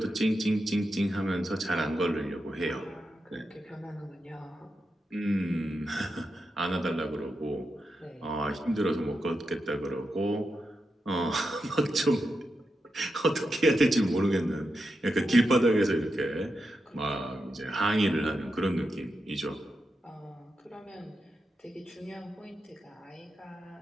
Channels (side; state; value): both; normal; correlation 0.87